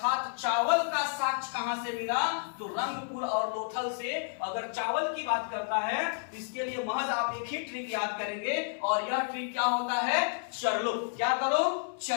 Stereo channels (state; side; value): silent; right; digital silence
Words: चावल का साक्ष्य कहां से मिला? तो रंगपुर और लोथल से। अगर चावल की बात करता है इसके लिए महज आप एक ही ट्रिक याद करेंगे और यह ट्रिक क्या होता है? चर लो। क्या करो?